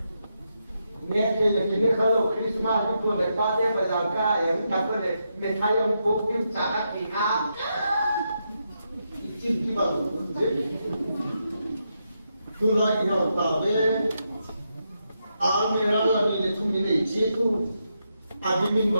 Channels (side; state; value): both; inverted; correlation -0.83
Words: nghe cái này kalau Christmas itu người ta đem về làm cái em cảm thấy này người Thái ông cũng phim trả cái à cái bằng tôi nói cái nào ta về mera là mình để chúng mình để chế tu admin